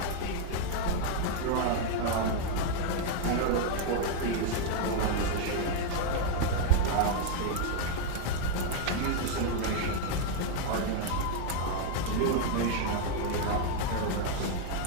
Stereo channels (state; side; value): different; both; correlation 0.00